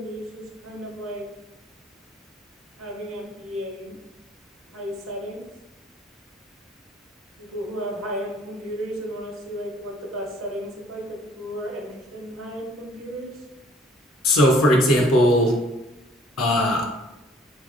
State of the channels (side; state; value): both; normal; correlation 0.59